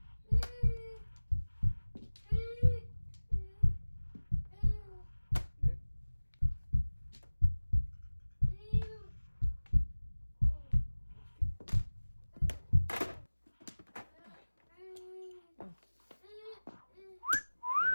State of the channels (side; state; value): both; inverted; correlation -1.00